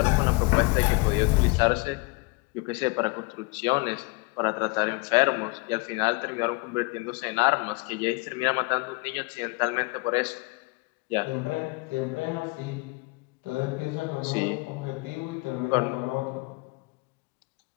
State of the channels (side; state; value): right; quieter; 26.3 dB